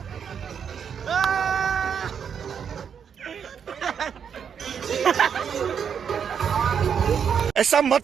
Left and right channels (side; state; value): left; quieter; 7.5 dB